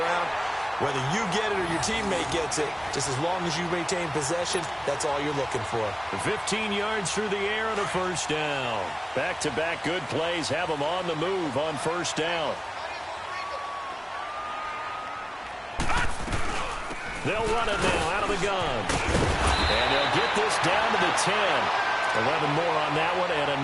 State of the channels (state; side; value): identical; both; correlation 1.00